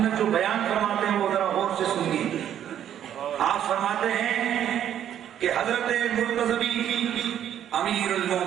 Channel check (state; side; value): quieter; left; 10.3 dB